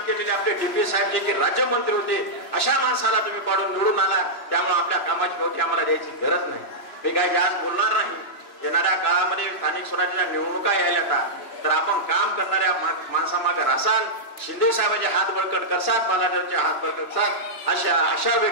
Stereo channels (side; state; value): right; late; 2.9 ms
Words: केलेले आपले DP साहेब जे की राज्यमंत्री होते, अशा माणसाला तुम्ही पाडून निवडून आला. त्यामुळे आपल्या कामाची गवठी आम्हाला द्यायची गरज नाही. मी काही जास्त बोलणार नाही. येणाऱ्या काळामध्ये स्थानिक स्वराज्याच्या निवडणुका यायला तर आपण काम करणाऱ्या माणसामागे रासाल, शिंदे साहेबांचे हात बळकट करसाल, बालाजीरावचे हात बळकट करसाल अशा आशा